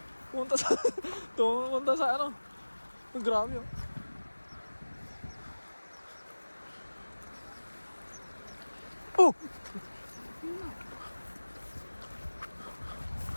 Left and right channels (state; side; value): inverted; both; correlation -1.00